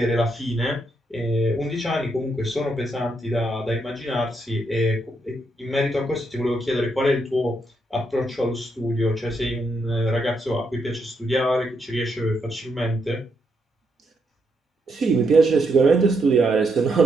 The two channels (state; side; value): normal; both; correlation 0.78